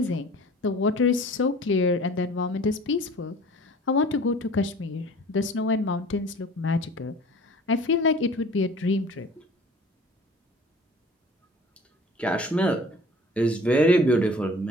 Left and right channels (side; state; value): both; normal; correlation 0.46